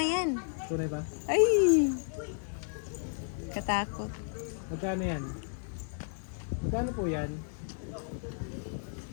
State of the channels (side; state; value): right; silent; digital silence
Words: yan. Tunay ba? Ay! Katakot. Magkano yan? Magkano po yan?